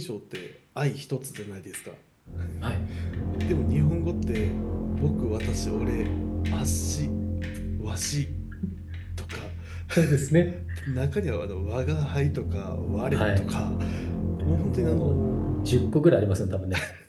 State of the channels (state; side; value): identical; both; correlation 1.00